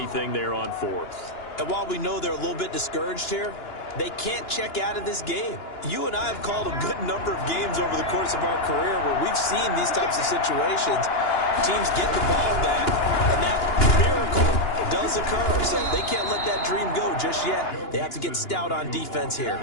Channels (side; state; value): right; late; 2.9 ms